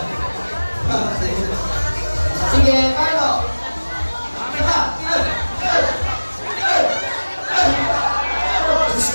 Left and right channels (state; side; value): inverted; both; correlation -1.00